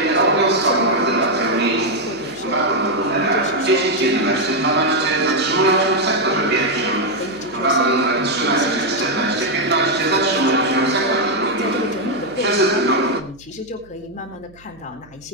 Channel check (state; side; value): noise; right; hum, 27 dB below the sound